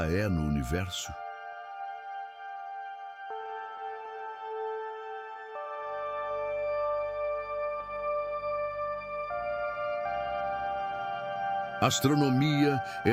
é no universo? A astronomia é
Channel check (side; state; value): both; identical; correlation 1.00